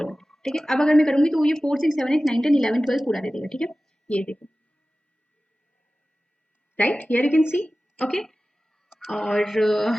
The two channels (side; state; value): both; normal; correlation 0.96